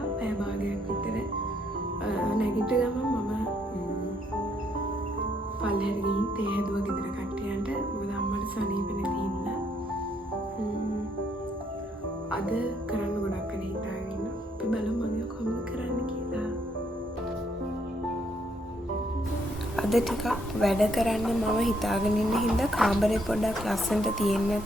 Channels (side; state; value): both; normal; correlation 0.71